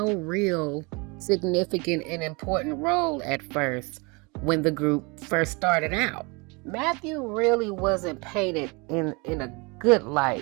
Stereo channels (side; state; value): left; quieter; 28.4 dB